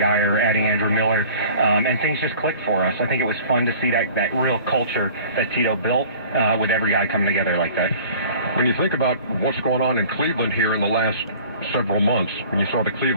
adding Andrew Miller, and things just clicked for us. I think it was fun to see that real culture that Tito built with every guy coming together like that. When you think about what's going on in Cleveland here in the last several months, when you saw the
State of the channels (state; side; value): inverted; both; correlation -0.46